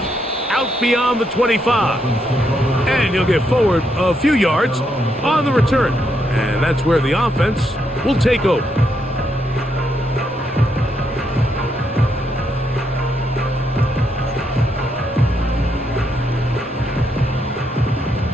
out beyond the 25. And he'll get forward a few yards on the return. And that's where the offense will take over.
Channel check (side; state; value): both; normal; correlation 0.78